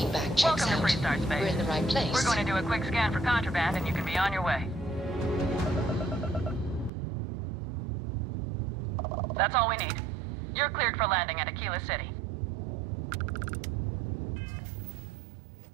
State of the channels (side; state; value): left; drops out; at 6.9 s